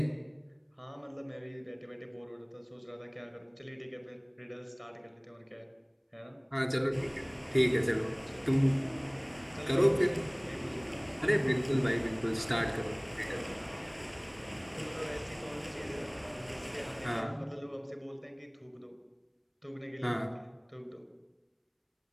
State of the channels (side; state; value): both; identical; correlation 1.00